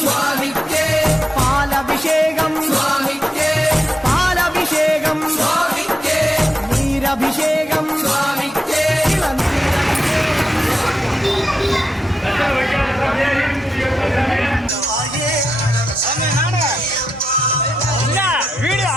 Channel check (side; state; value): both; normal; correlation 0.86